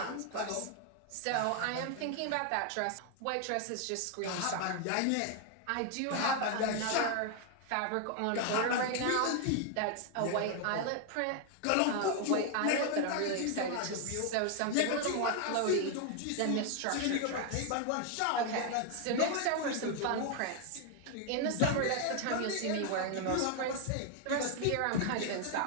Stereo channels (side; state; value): both; different; correlation 0.00